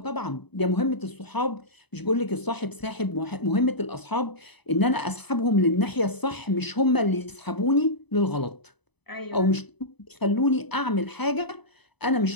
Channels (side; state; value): right; late; 0.99 ms